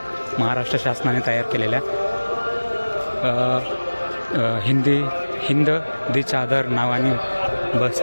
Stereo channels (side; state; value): both; inverted; correlation -1.00